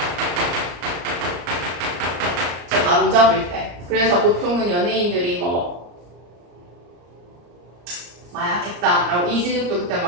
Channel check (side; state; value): left; late; 34 ms